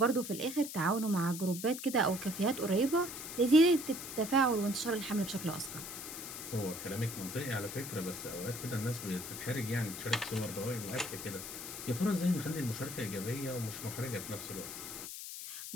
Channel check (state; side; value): noise; left; hiss, 8 dB below the sound